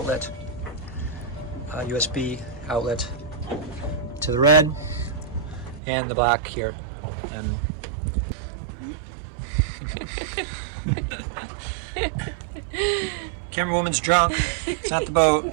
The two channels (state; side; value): drops out; left; at 5.8 s